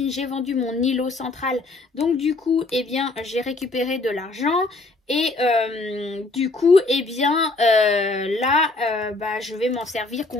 j'ai vendu mon îlot central. Donc du coup, eh bien, j'ai récupéré de l'argent. Et du coup, eh bien, là, bah, je vais m'en servir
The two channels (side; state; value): right; quieter; 3.2 dB